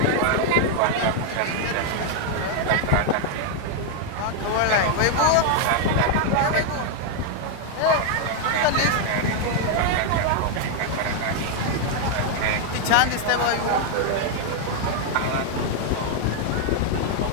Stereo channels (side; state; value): both; different; correlation 0.00